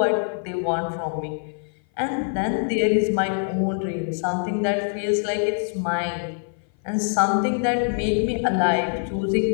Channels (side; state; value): right; silent; 57 dB below the other